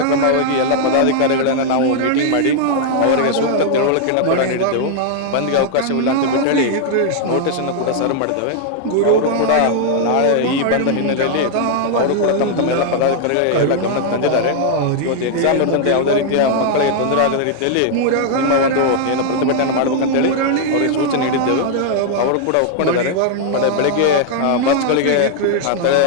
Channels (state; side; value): different; both; correlation 0.00